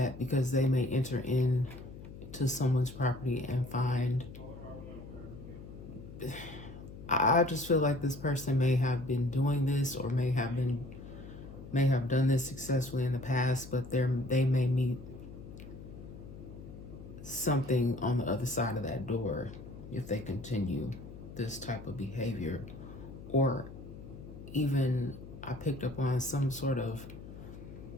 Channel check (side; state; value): left; noise; hum, 14 dB below the sound